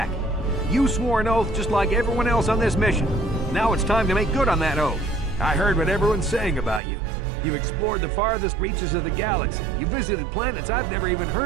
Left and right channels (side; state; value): left; drops out; at 6.8 s